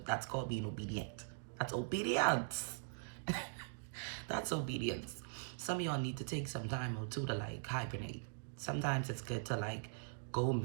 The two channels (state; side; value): silent; left; digital silence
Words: called being obedient. That's obedience. That's obedience. Some of y'all need to take some time or two to like hibernate. Sometimes it's good to like go